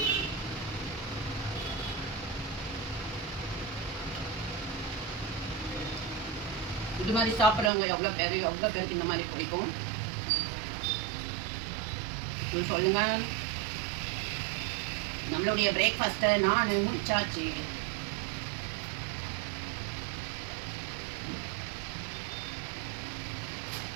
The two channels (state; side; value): drops out; left; at 7.7 s